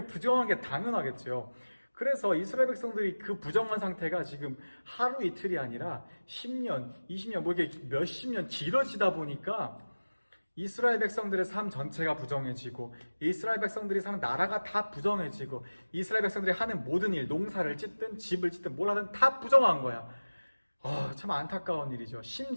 부정한 게 당연하겠죠. 그래서 이스라엘 백성들이 그 부정한 상태가 지금 하루 이틀이 아니라 10년, 20년, 뭐 이게 몇십 년 길어지다 보니까 이스라엘 백성들의 삶 전체가 부정해지고 이스라엘 백성들이 사는 나라가 다 부정해지고 이스라엘 백성들이 하는 모든 일, 농사를 짓든 집을 짓든 뭘 하든 다 부정한 거야. 참 안타까운 일이죠.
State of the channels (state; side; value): inverted; both; correlation -1.00